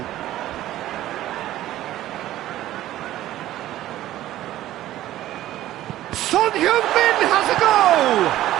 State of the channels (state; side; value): quieter; left; 14.2 dB